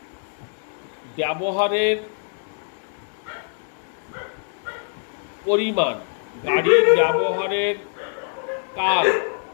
ব্যবহারের পরিমাণ, গাড়ির ব্যবহারের কাল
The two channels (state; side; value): silent; right; digital silence